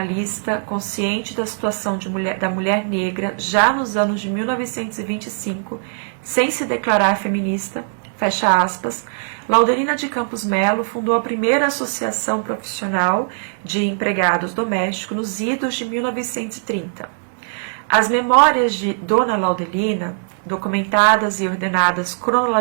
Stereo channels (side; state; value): left; silent; digital silence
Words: consciente da situação da mulher negra já nos anos de 1925, sem se declarar feminista, fecha aspas, Laudelina de Campos Melo fundou a primeira associação profissional de empregados domésticos nos idos de 1930. As memórias de Dona Laudelina, documentadas e ordenadas